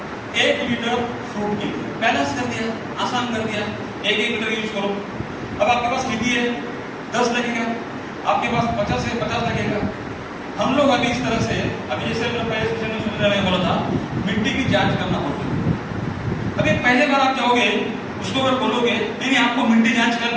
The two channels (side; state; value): both; identical; correlation 1.00